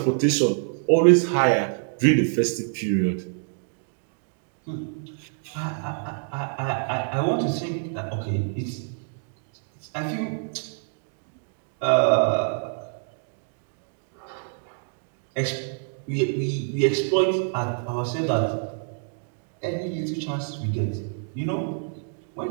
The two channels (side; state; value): left; silent; 61 dB below the other